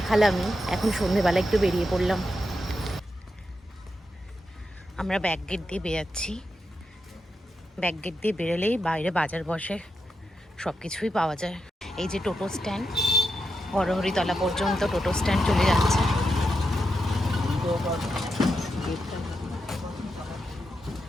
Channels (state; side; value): normal; both; correlation 0.86